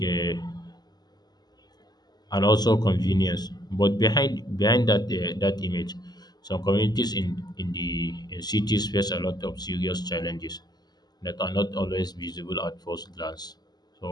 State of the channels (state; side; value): late; right; 0.20 ms